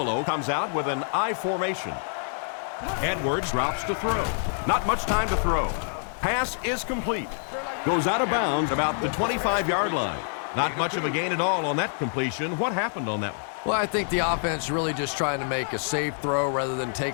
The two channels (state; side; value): silent; right; digital silence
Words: comes out with an I formation. Edwards drops to throw. Not much time to throw. Pass is complete. Goes out of bounds about the 25-yard line. Not much of a gain at all on that completion. What happened on that one? Well, I think the offense really just trying to make a safe throw rather than